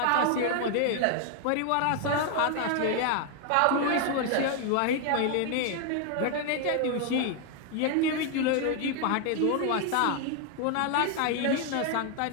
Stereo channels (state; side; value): different; both; correlation 0.01